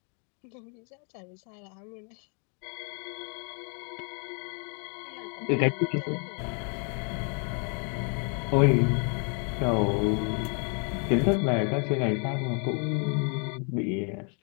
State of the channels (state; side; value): quieter; right; 39.9 dB